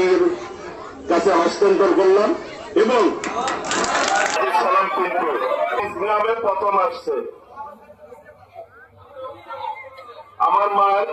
কাছে হস্তান্তর করলাম এবং সালাম কিন্তু গ্রামে প্রথম আসছে। আমার মায়ের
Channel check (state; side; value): identical; both; correlation 1.00